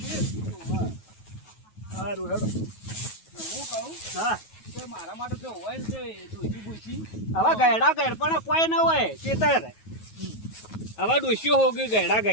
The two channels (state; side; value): late; right; 9.3 ms